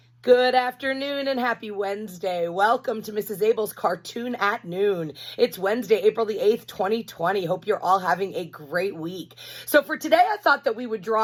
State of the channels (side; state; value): both; identical; correlation 1.00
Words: Good afternoon and happy Wednesday. Welcome to Mrs. Abell's Cartoon at Noon. It's Wednesday, April the 8th, 2020. Hope you're all having a great week. So for today, I thought that we would